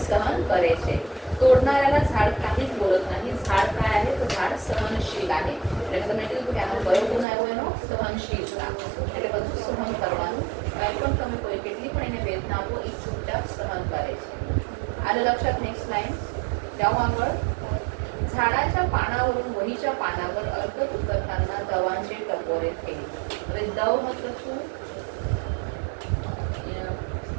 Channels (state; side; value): drops out; left; at 7.2 s